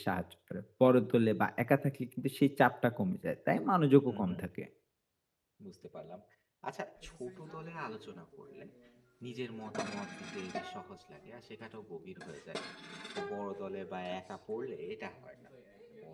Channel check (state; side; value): identical; both; correlation 1.00